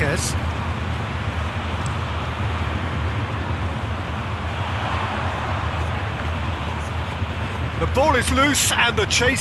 The ball is loose and the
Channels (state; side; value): identical; both; correlation 1.00